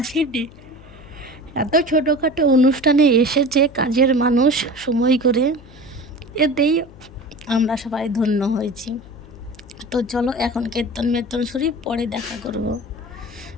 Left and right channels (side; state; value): left; noise; hum, 20 dB below the sound